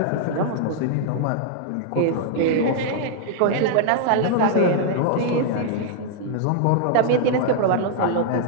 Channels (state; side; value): different; both; correlation -0.01